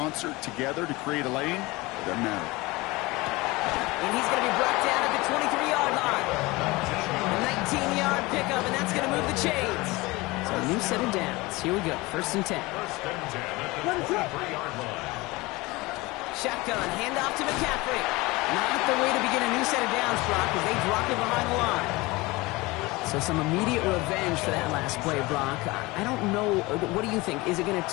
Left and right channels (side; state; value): right; quieter; 22.2 dB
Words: together to create a lane, it doesn't matter. And he's going to be brought down at the 23-yard line. A 19-yard pickup, and that's going to move the chains. So a new set of downs. Here we go. 1st and 10. 1st and 10 at the 23-yard line. Shotgun, handoff to McCaffrey. Not the way to begin a new set of downs, Brock, as they drop it behind the line. So some immediate revenge for that last play, Brock. I don't know. What do you think? Is it going to